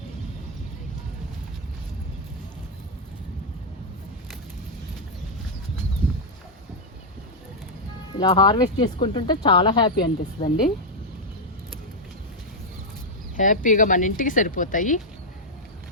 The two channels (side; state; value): both; normal; correlation -0.02